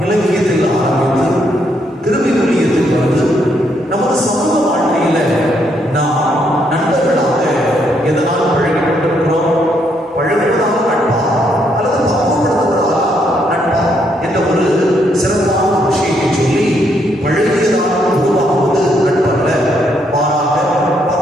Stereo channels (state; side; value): normal; both; correlation 0.74